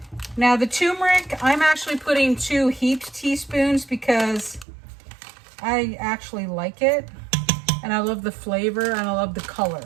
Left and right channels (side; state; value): left; drops out; at 4.7 s